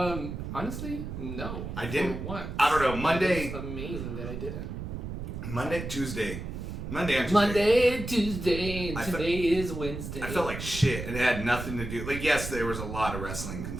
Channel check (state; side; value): noise; right; rumble, 7 dB below the sound